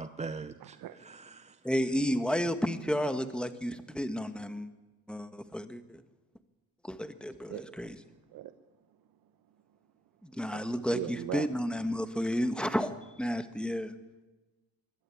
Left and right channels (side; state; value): both; normal; correlation 0.87